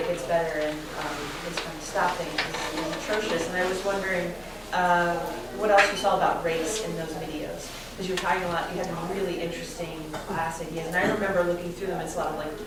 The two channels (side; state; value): both; identical; correlation 1.00